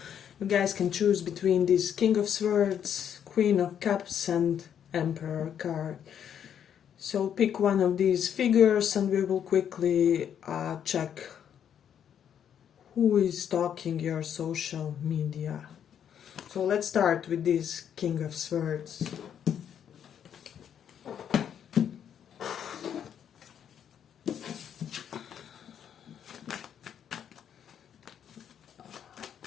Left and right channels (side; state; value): right; quieter; 8.9 dB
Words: you guys can choose between this King of Swords, Queen of Cups and Emperor card. So pick one of these figures and we will quickly check who is stalking your social media. So let's start with this King of Swords.